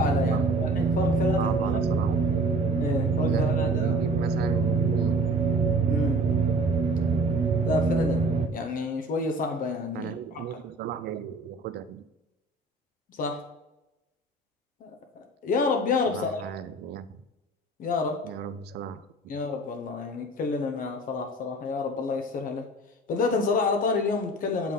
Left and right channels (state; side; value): normal; both; correlation 0.45